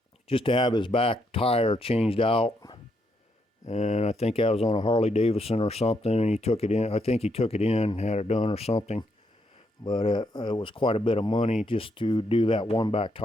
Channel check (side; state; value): both; normal; correlation 0.77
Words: just to have his back tire changed out. And I think that was on a Harley Davidson or something, and he took it in. I think he took it in, had it done or something. But it was quite a bit of money just to do that one back